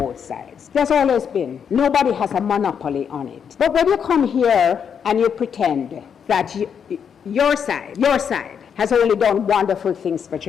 sides. There's always been. Nobody has a monopoly on it. But when you come here and you pretend that your side has only done wonderful things for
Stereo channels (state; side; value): quieter; right; 7.4 dB